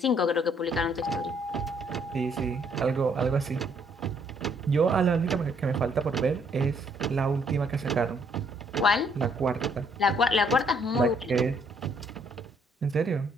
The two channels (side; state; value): both; normal; correlation 0.67